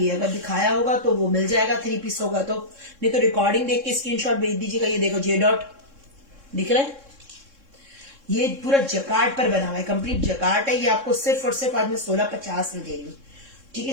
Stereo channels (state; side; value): late; left; 3.6 ms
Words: है, अगर दिखाया होगा तो वो मिल जाएगा, 3 पीस होगा तो। नहीं तो रिकॉर्डिंग देख के स्क्रीनशॉट भेज दीजिएगा। ये देखो जे डॉट दिख रहा है, ये पूरा जकार्ड पर बना हुआ है, कंप्लीट जकार्ड है। ये आपको सिर्फ और सिर्फ आज मैं 1650 में दे रही हूँ, ठीक